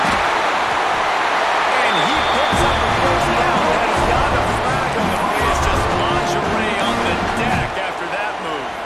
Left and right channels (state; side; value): identical; both; correlation 1.00